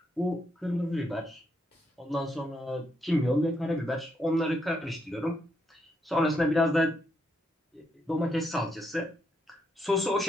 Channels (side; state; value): both; normal; correlation 0.78